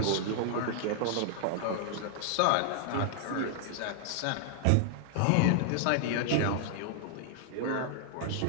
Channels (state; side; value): different; both; correlation 0.00